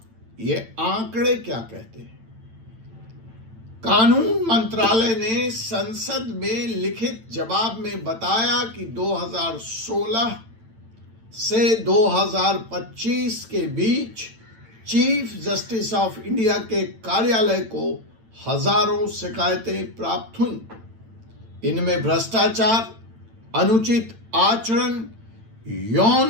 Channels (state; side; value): late; left; 8.9 ms